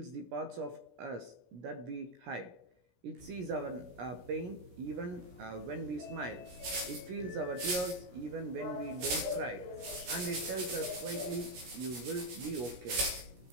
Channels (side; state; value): left; late; 17 ms